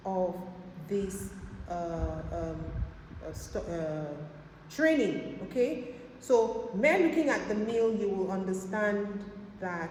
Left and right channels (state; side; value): identical; both; correlation 1.00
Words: of this training, okay? So, mere looking at the meal, you will understand